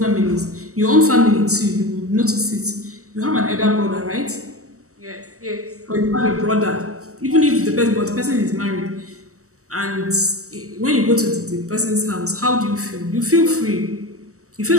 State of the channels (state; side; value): late; left; 0.65 ms